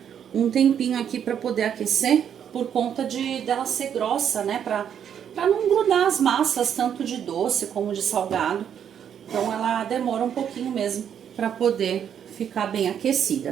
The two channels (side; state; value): left; quieter; 8.7 dB